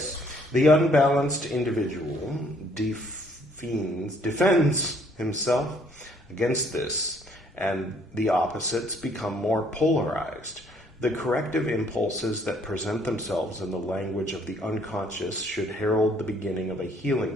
the unbalanced individual defends himself against this, and the opposites become more polarized. The corrective impulses that present themselves in the language of the unconscious should herald the beginning of a healing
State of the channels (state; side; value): normal; both; correlation 0.64